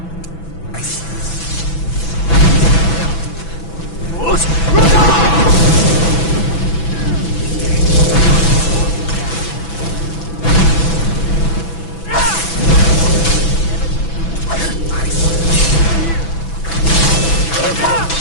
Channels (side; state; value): right; late; 6.0 ms